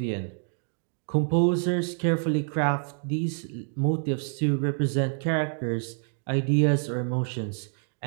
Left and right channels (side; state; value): left; silent; 60 dB below the other